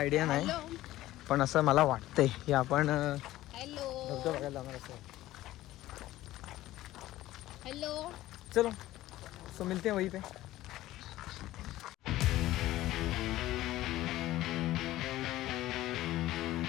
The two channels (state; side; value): quieter; right; 15.6 dB